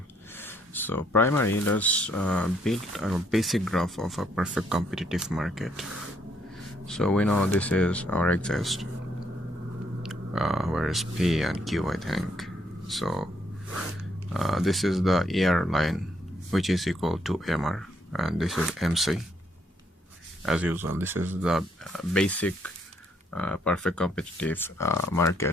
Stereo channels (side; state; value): both; normal; correlation 0.71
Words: So primary, let's build a basic graph of a perfect competitive market. So we know this is our axis, where is P and Q, I think. So this is the ER line, which is equal to MR, and this is MC. As usual, this is the basic perfect competitive